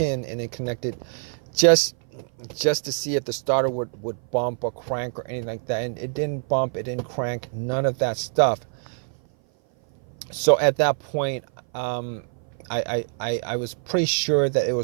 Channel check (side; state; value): left; silent; 57 dB below the other